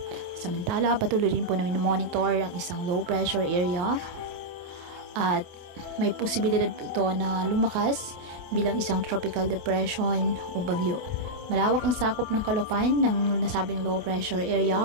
Samantala, patuloy rin po na monitor ang isang low pressure area at may posibilidad po ito na lumakas bilang isang tropical depression o bagyo. Malawak ang sakop ng kalupaan ng nasabing low pressure area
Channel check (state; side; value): late; left; 28 ms